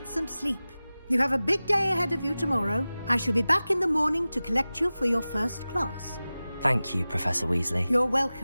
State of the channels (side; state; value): both; inverted; correlation -0.97